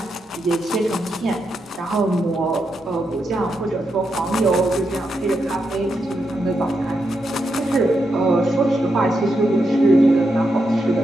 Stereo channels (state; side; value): normal; both; correlation 0.84